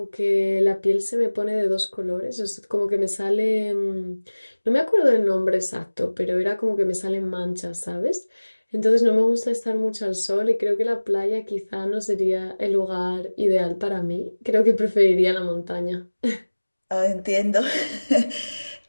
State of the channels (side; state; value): both; inverted; correlation -1.00